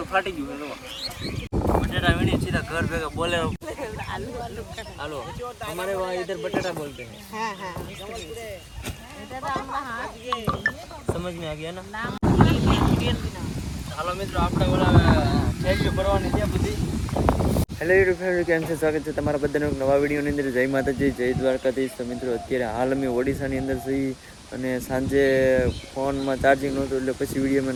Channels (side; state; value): both; identical; correlation 1.00